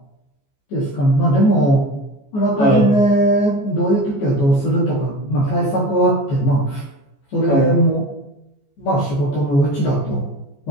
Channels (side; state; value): right; late; 14 ms